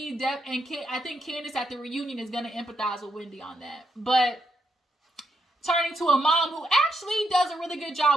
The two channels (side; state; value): both; normal; correlation 0.79